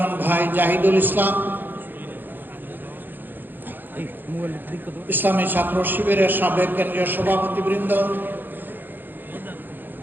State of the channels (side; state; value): left; late; 0.092 ms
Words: ভাই জাহিদুল ইসলাম, ইসলামী ছাত্র শিবিরের সাবেক কেন্দ্রীয় সভাপতিবৃন্দ,